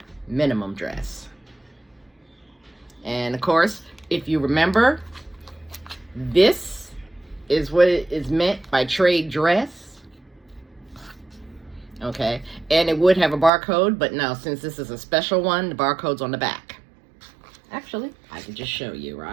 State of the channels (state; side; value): drops out; left; at 13.5 s